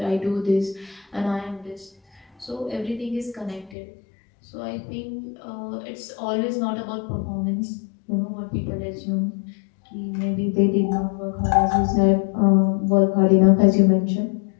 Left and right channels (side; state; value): right; drops out; at 3.8 s